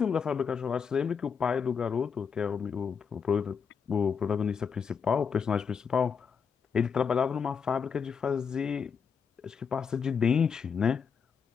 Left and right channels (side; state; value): right; quieter; 6.4 dB